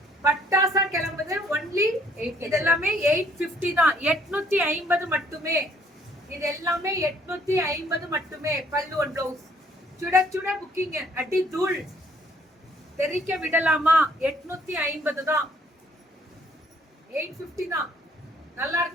பட்டாசா கிளம்புது. ஒன்லி இது எல்லாமே 850 தான். 850 மட்டுமே. இது எல்லாமே 850 மட்டுமே. பல்லு அண்ட் பிளவுஸ் சுட சுட புக்கிங். அடி தூள் தெரிக்க விடலாமா? 850 தான். 850 தான். நல்லா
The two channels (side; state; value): both; normal; correlation 0.63